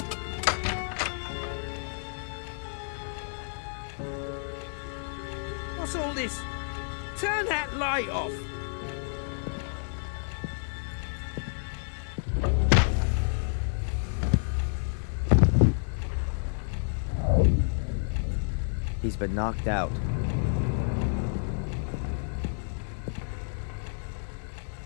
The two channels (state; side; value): silent; right; digital silence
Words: What's all this? Turn that light off! He's been knocked out.